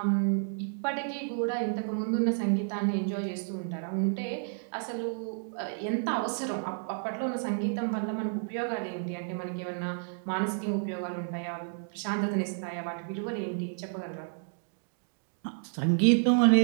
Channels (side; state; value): left; silent; digital silence